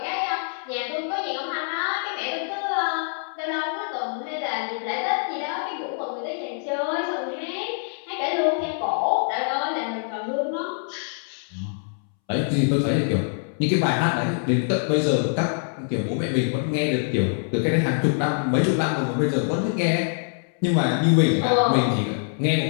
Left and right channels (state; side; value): silent; right; 62 dB below the other